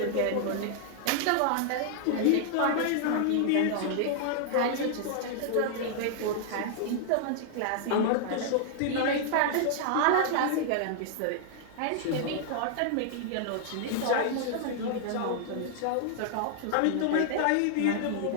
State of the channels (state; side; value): different; both; correlation -0.01